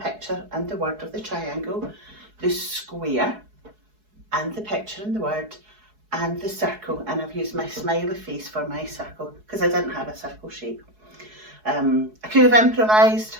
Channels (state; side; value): late; left; 4.7 ms